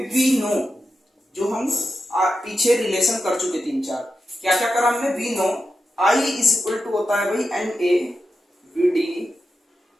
वी नो, जो हम पीछे रिलेशन कर चुके 3-4, क्या क्या करा हमने, we know I is equal to होता है भाई NA VD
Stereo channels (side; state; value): both; normal; correlation 0.90